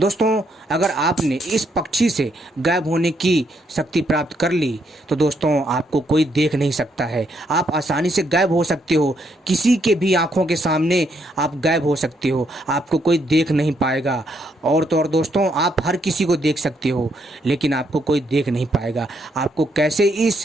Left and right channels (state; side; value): normal; both; correlation 0.75